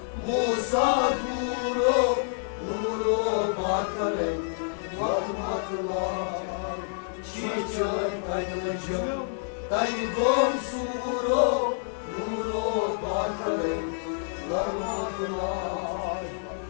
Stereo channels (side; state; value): right; silent; digital silence